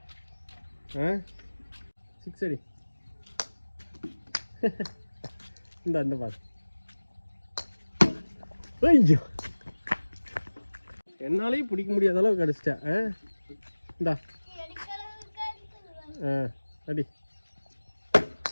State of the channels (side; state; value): both; inverted; correlation -1.00